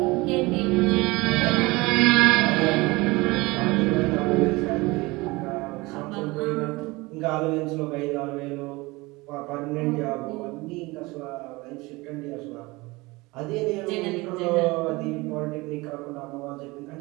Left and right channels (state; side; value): quieter; left; 22.8 dB